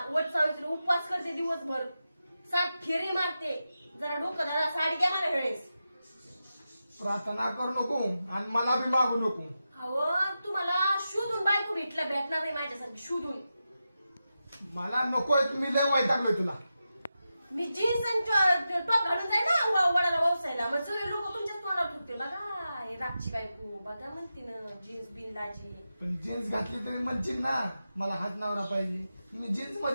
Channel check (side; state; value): both; inverted; correlation -0.90